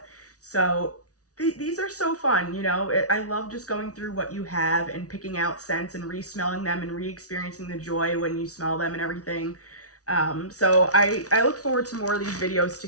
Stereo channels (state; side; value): late; right; 0.67 ms